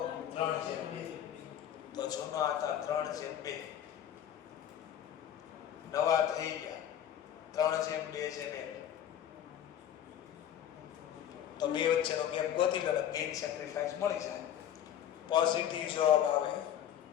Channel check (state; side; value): quieter; right; 10.3 dB